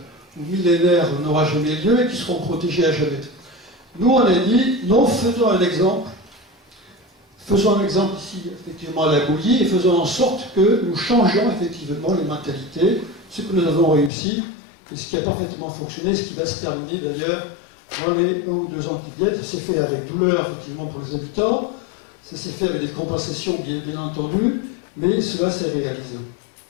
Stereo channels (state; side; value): drops out; right; at 14.1 s